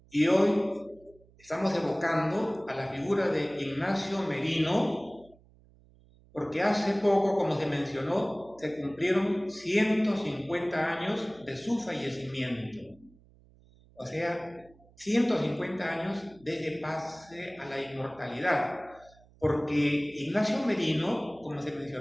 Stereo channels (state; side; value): noise; right; hum, 27 dB below the sound